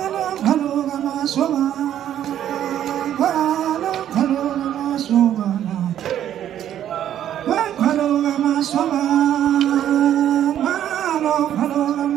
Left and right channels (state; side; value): quieter; left; 10.9 dB